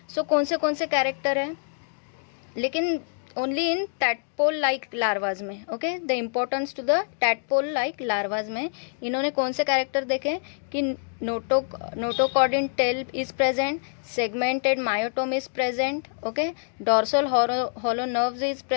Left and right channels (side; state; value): right; silent; digital silence